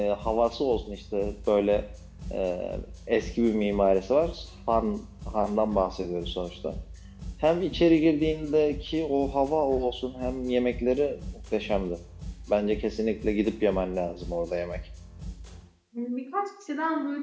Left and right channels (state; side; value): identical; both; correlation 1.00